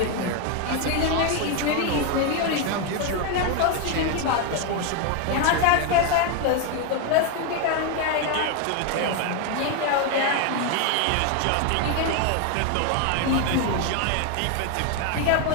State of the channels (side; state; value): both; different; correlation 0.01